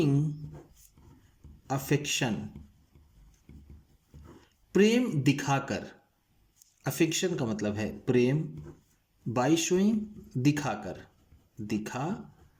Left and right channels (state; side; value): identical; both; correlation 1.00